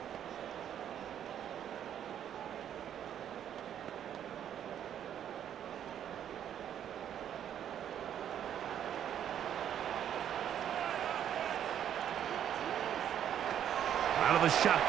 Out of the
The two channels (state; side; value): quieter; left; 9.8 dB